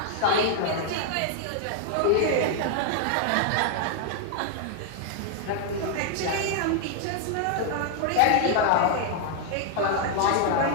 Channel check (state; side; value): different; both; correlation 0.00